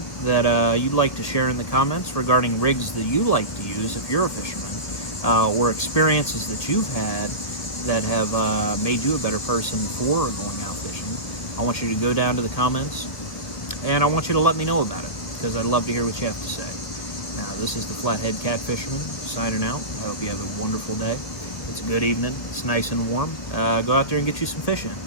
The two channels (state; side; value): late; right; 1.7 ms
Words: that you'd like to share in the comments regarding rigs that you like to use if you're a fisherman, or experiences that you've had that have made you a better person for going out fishing, I want you to go down to the comments, and I want you to let me know about it, because I'd love to hear what you have to say. Now, this is the Flathead Catfisherman signing out. I hope you have a wonderful day. It's a good evening. It's nice and warm. Go out there and get you some fish in.